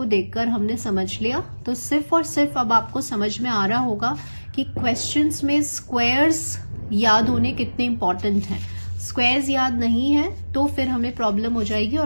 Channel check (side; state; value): both; inverted; correlation -1.00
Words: देखकर हमने समझ लिया, तो सिर्फ और सिर्फ अब आपको समझ में आ रहा होगा कि क्वेश्चंस में स्क्वायर्स याद होने कितने इंपॉर्टेंट हैं। स्क्वायर्स याद नहीं है तो फिर हमें प्रॉब्लम हो जाएगी